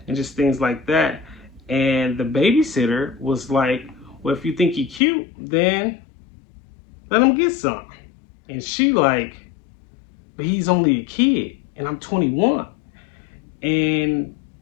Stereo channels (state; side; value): drops out; right; at 5.0 s